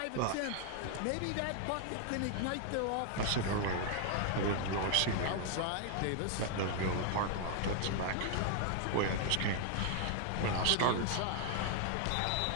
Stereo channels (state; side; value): different; both; correlation 0.00